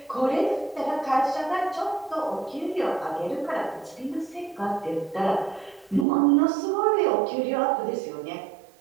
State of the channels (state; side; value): drops out; left; at 6.1 s